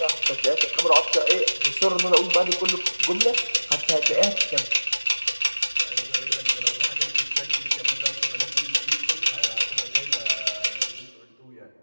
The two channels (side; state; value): both; inverted; correlation -1.00